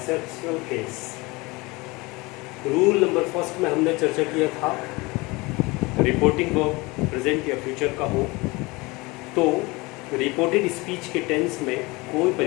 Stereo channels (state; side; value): quieter; right; 24.0 dB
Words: case. Rule number first में हमने चर्चा किया था रिपोर्टिंग वर्ब प्रेजेंट या फ्यूचर का हो तो रिपोर्टेड स्पीच के टेंस में कोई